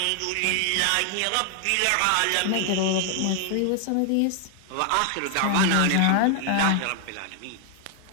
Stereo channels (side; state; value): both; different; correlation 0.00